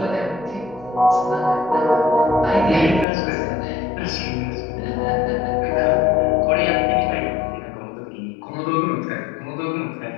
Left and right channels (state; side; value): drops out; right; at 3.1 s